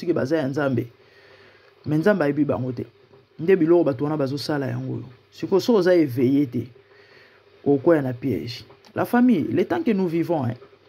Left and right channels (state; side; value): identical; both; correlation 1.00